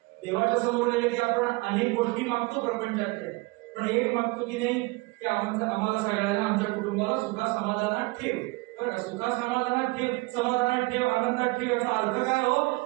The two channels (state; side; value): quieter; left; 24.3 dB